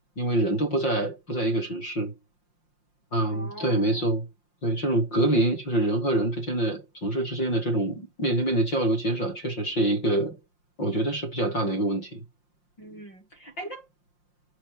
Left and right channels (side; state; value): right; late; 5.7 ms